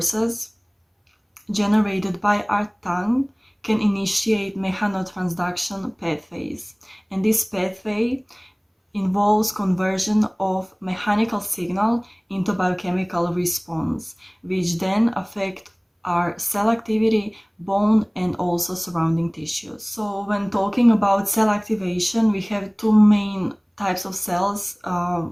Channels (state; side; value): identical; both; correlation 1.00